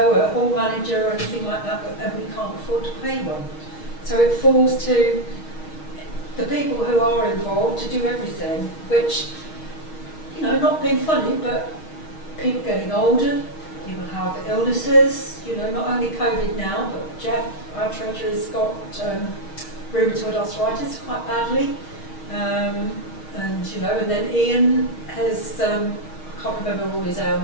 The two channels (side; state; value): right; late; 6.4 ms